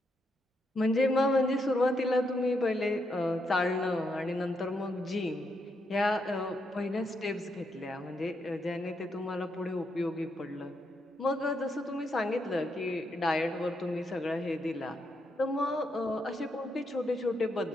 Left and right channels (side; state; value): both; normal; correlation 0.80